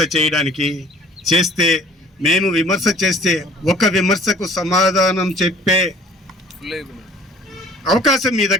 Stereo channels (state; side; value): normal; both; correlation 0.52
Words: చేయడానికి చేస్తే, మేము విమర్శ చేస్తే ఒక విమర్శకు సమాధానం చెప్పే అవకాశం మీ